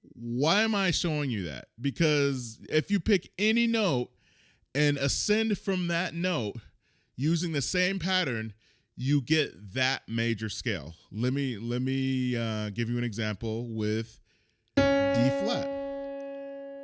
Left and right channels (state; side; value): identical; both; correlation 1.00